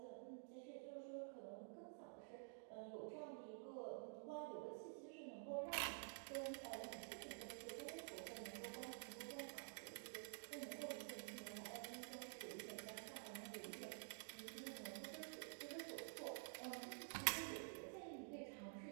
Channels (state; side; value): silent; left; digital silence